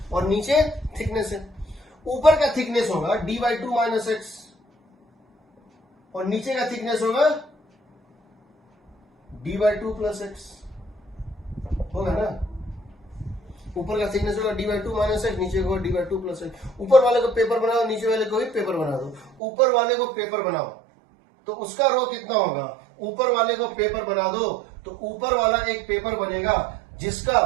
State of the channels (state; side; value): drops out; left; at 19.4 s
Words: और नीचे थिकनेस है। ऊपर का थिकनेस होगा d/2 माइनस एक्स और नीचे का थिकनेस होगा d/2 प्लस एक्स, होगा ना। ऊपर का थिकनेस होगा d/2 माइनस एक्स, नीचे होगा d/2 प्लस एक्स। ऊपर वाले को पेपर बनाओ, नीचे वाले को भी पेपर बना दो। ऊपर वाले को पेपर बनाओ तो उसका रो कितना होगा, ऊपर वाले को पेपर बना दो तो ऊपर वाला एक पेपर बनेगा